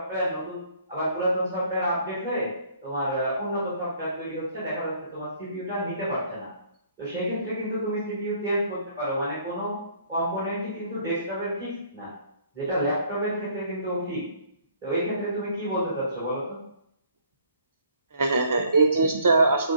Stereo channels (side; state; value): both; inverted; correlation -0.60